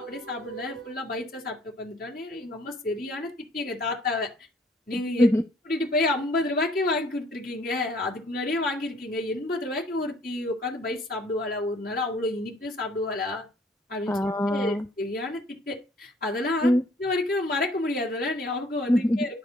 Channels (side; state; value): both; normal; correlation 0.59